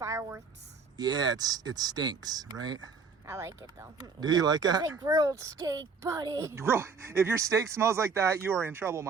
Yeah, it stinks, right? I like it though. Do you like that? It's like grilled steak, buddy. If your steak smells like that, you are in trouble,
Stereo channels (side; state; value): left; quieter; 5.0 dB